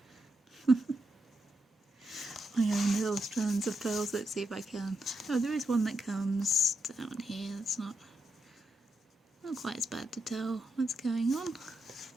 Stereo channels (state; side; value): normal; both; correlation 0.83